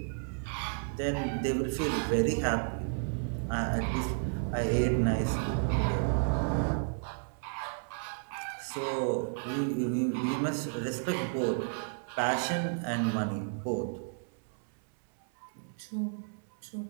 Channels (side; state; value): left; silent; 56 dB below the other